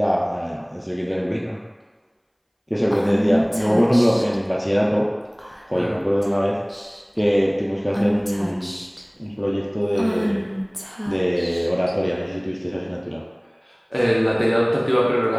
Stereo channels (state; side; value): identical; both; correlation 1.00